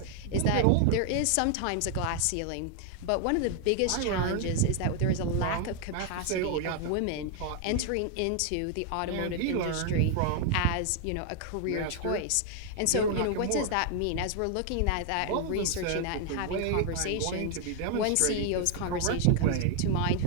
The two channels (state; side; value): different; both; correlation 0.00